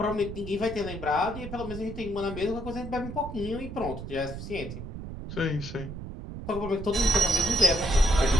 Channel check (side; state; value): right; noise; rumble, 9 dB below the sound